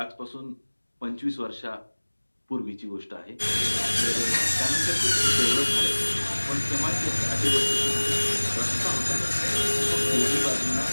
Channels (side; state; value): both; inverted; correlation -1.00